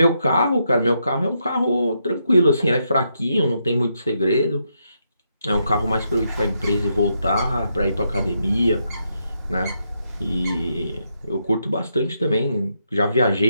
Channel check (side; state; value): both; inverted; correlation -0.80